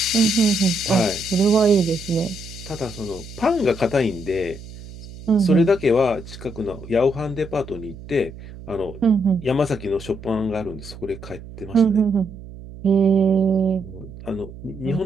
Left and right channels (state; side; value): noise; right; hum, 15 dB below the sound